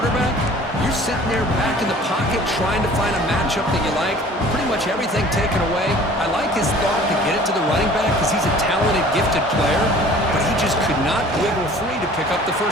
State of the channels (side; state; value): both; normal; correlation 0.48